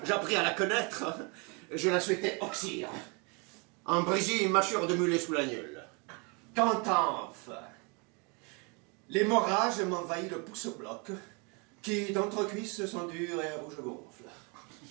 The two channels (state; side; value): quieter; left; 32.0 dB